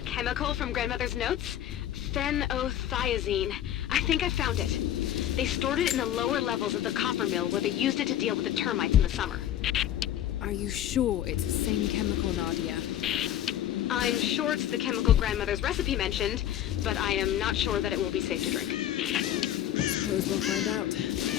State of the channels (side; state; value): right; quieter; 11.5 dB